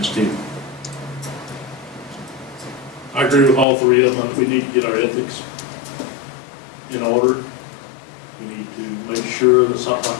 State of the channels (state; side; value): drops out; right; at 3.7 s